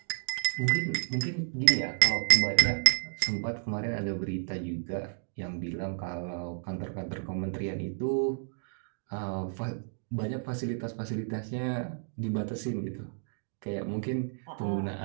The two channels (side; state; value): left; silent; digital silence